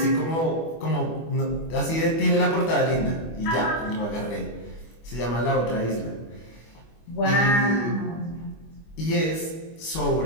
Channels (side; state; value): right; late; 25 ms